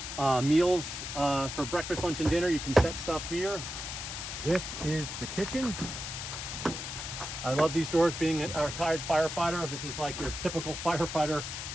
meals for breakfast, lunch, and dinner. You can set stuff here. This is the kitchen. I love these doors. Being a retired firefighter, this is like your typical firefighter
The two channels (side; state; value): left; noise; hiss, 6 dB below the sound